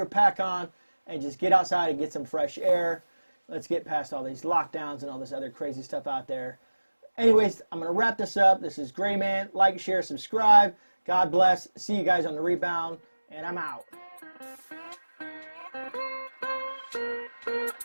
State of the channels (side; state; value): both; inverted; correlation -1.00